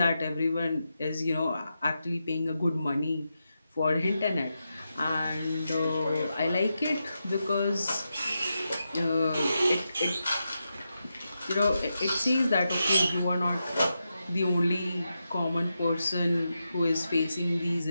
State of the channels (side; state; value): both; inverted; correlation -0.88